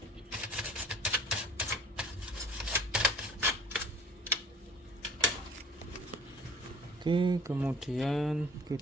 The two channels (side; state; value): both; normal; correlation 0.48